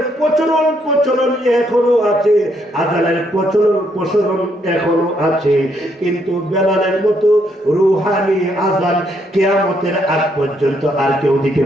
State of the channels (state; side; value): normal; both; correlation 0.73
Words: প্রচলন এখনো আছে, আযানের প্রচলন এখনো আছে, কিন্তু বেলালের মতো রূহানি আযান কিয়ামতের আগ পর্যন্ত আর কেউ দিতে